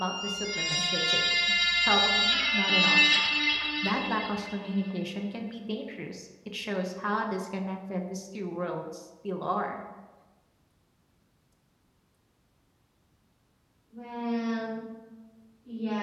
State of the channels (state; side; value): identical; both; correlation 1.00